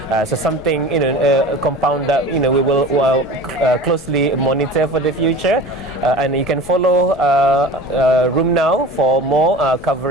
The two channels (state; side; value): normal; both; correlation 0.37